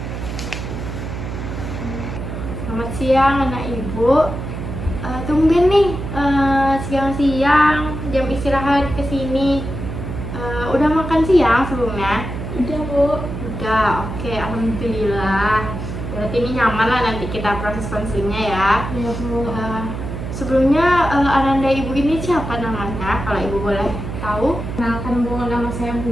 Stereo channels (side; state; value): right; noise; hum, 6 dB below the sound